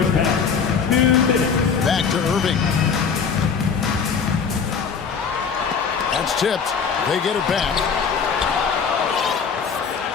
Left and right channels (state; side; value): quieter; right; 6.1 dB